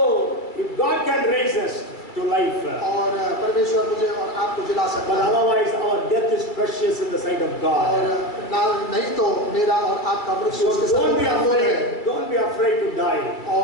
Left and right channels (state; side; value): late; right; 2.3 ms